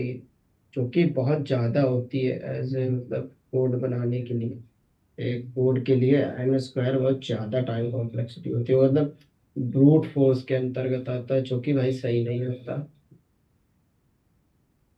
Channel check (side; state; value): both; identical; correlation 1.00